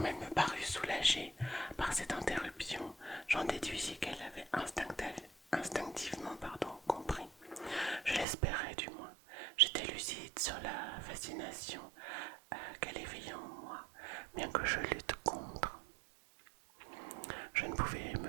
elle me parut soulagée par cette interruption, j'en déduisis qu'elle avait instinctivement compris. Je l'espérais du moins. J'étais lucide sur la fascination qu'elle éveillait en moi, bien que je lutte contre. Je ne pouvais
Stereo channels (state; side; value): drops out; left; at 8.2 s